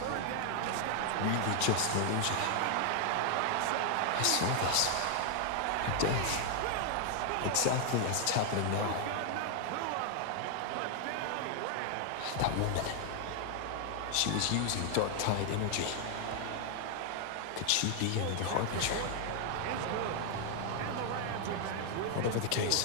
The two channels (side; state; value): both; different; correlation 0.00